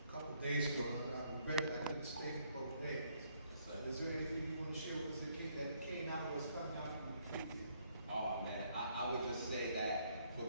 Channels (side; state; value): both; inverted; correlation -0.69